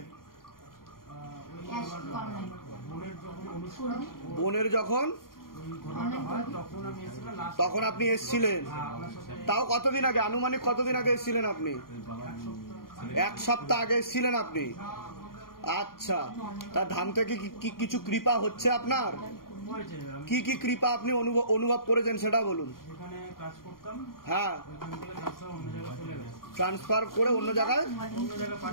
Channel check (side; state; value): right; late; 0.92 ms